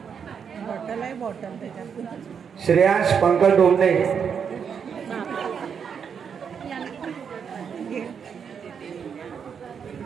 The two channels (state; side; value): quieter; left; 7.0 dB